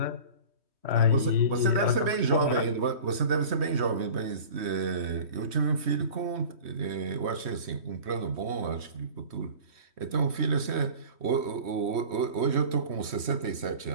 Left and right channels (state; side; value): late; left; 3.1 ms